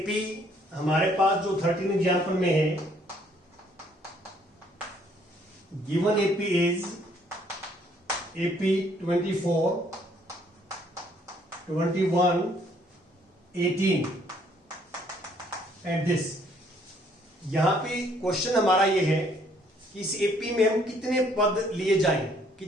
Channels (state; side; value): normal; both; correlation 0.65